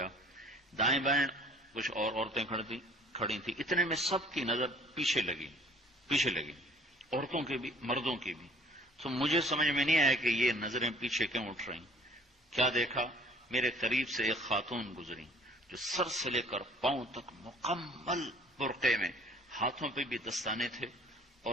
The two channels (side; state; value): both; normal; correlation 0.53